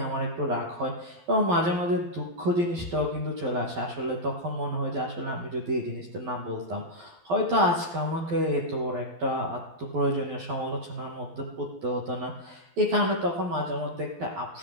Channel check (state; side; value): late; left; 12 ms